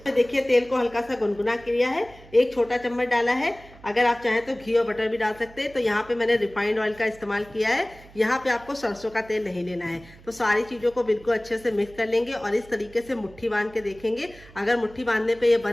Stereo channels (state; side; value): noise; right; hum, 22 dB below the sound